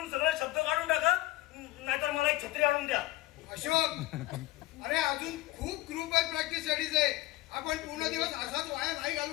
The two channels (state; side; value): quieter; right; 17.8 dB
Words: सगळे शब्द काढून टाका, नाहीतर मला एक छत्री आणून द्या. अशोक, अरे अजून खूप ग्रुप आहे प्रॅक्टिस साठीच आहे. आपण पूर्ण दिवस असाच वाया नाही